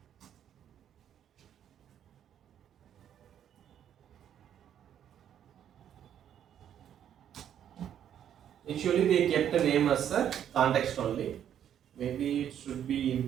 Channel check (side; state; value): left; quieter; 9.8 dB